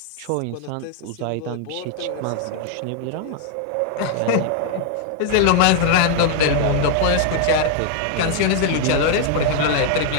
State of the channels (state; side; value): different; both; correlation 0.00